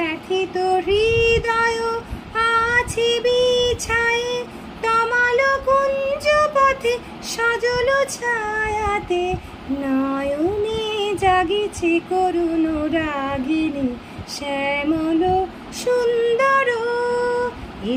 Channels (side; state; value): both; identical; correlation 1.00